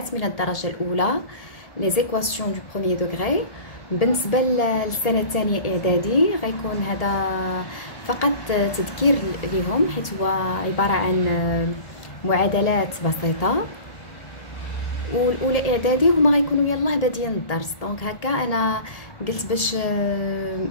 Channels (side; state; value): right; late; 1.8 ms